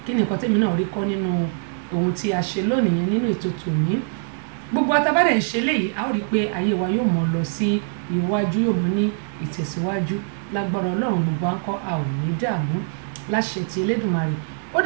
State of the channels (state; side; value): silent; left; digital silence